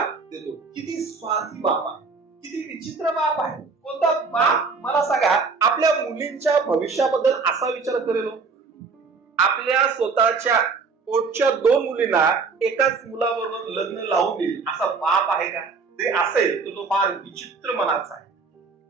देतो. किती स्वार्थी बाप आहे, किती विचित्र बाप आहे. कोणता बाप मला सांगा आपल्या मुलींच्या भविष्याबद्दल असा विचार करेल? आपल्या स्वतःच्या पोटच्या 2 मुलींना एकाच मुलाबरोबर लग्न लावून देईल असा बाप आहे का? ते असेल तर तो फार विचित्र मनाचा आहे,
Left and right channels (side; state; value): left; quieter; 4.6 dB